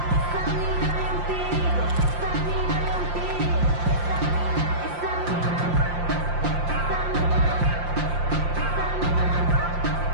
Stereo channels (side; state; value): left; late; 5.7 ms